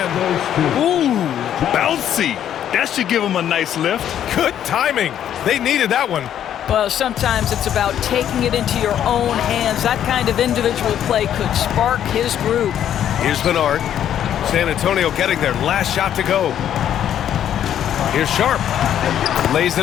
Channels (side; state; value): right; quieter; 10.3 dB